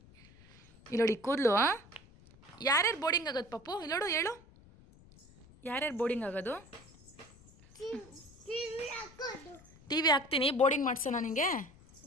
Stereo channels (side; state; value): left; noise; rumble, 24 dB below the sound